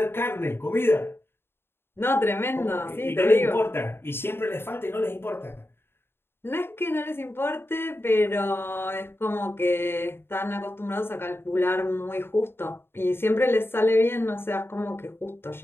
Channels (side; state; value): right; late; 0.11 ms